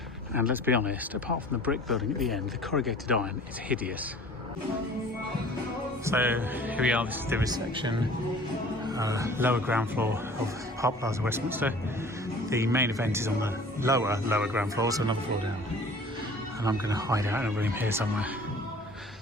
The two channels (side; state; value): both; normal; correlation 0.47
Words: And let's be honest, apart from the brick building at the end, the corrugated iron is hideous. So here we are. This is the reception, lower ground floor of Park Plaza Westminster. The main event is on the lower ground floor, so another floor down. And I'm going to hide out in a room here somewhere